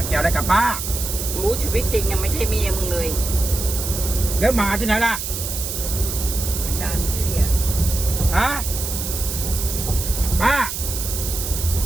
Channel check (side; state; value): right; noise; hiss, 5 dB below the sound